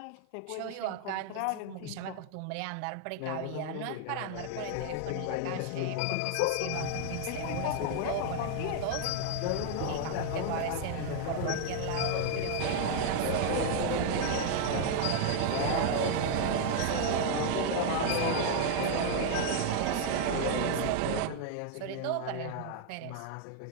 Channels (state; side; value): different; both; correlation 0.00